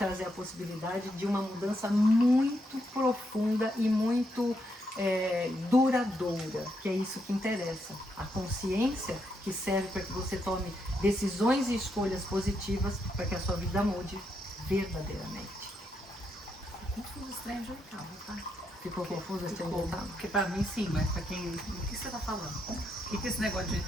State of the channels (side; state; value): both; normal; correlation 0.79